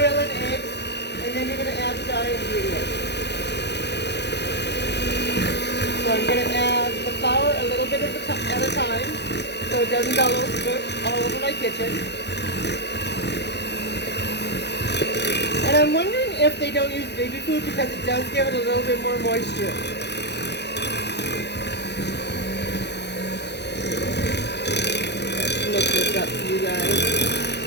and eggs, and then you're going to add the dry ingredients. So I'm going to add the flour a little bit at a time, so it doesn't go all over my kitchen. And I'm wondering if they don't use baby food because it does give it a little bit more moisture. Let's mix this up for you guys.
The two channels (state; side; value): late; right; 0.50 ms